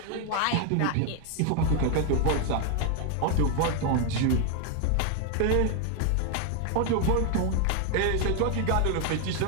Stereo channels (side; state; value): both; different; correlation 0.01